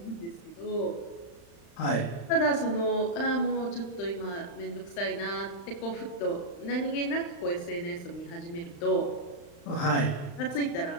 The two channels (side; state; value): right; late; 35 ms